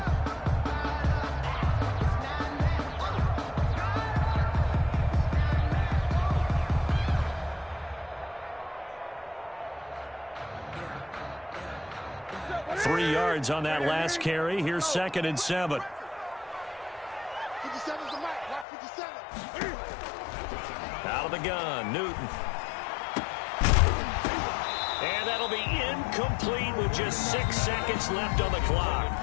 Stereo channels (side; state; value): right; drops out; at 18.7 s